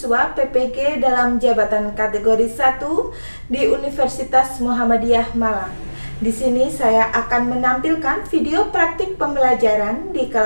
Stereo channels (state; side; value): inverted; both; correlation -1.00